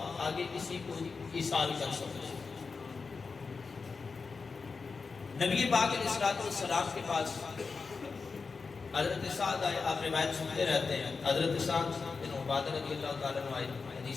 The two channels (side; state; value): right; quieter; 4.7 dB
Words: آگے کسی کو ایصال کر سکتے ہیں. نبی پاک علیہ الصلوۃ والسلام کے پاس حضرت سعد آئے. آپ روایت سنتے رہتے ہیں. حضرت سعد بن عبادہ رضی اللہ تعالیٰ عنہ آئے.